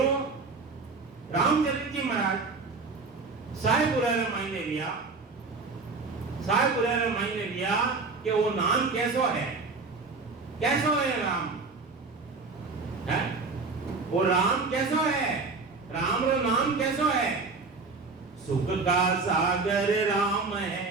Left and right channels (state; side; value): quieter; left; 4.1 dB